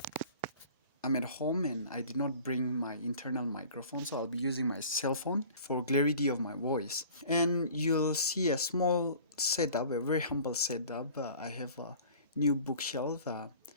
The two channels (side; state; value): both; inverted; correlation -0.46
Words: at home and I did not bring my internal microphone, so I'll be using my cell phone for clarity of my voice. And you'll see a small setup, a very humble setup. I have a new bookshelf.